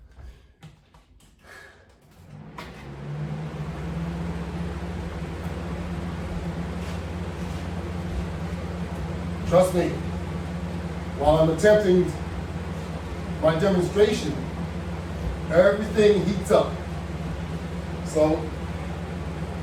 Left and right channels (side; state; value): both; identical; correlation 1.00